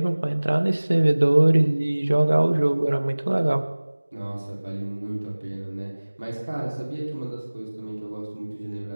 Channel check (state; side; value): inverted; both; correlation -1.00